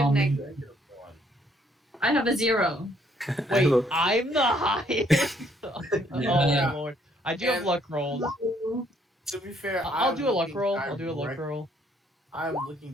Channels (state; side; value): normal; both; correlation 0.67